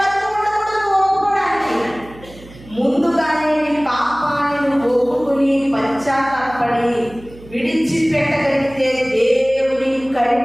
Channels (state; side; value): noise; right; hum, 20 dB below the sound